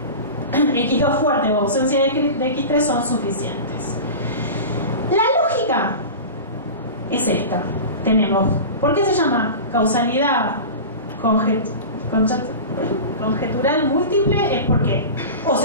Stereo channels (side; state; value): both; inverted; correlation -0.30